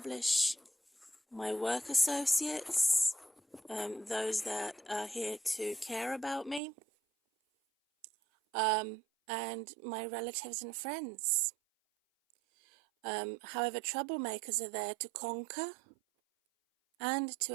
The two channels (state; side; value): drops out; left; at 6.6 s